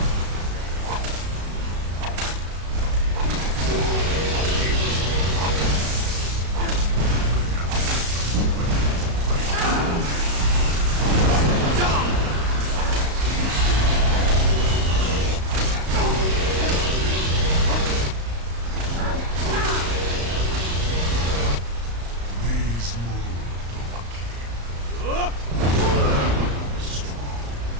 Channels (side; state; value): left; late; 35 ms